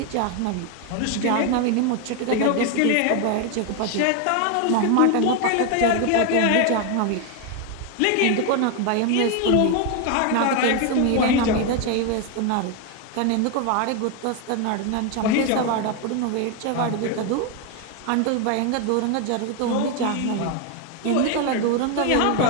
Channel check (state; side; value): different; both; correlation 0.01